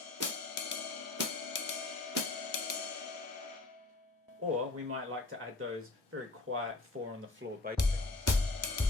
or we might like to add those very quiet 4 on the floor bass drums.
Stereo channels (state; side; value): quieter; right; 3.2 dB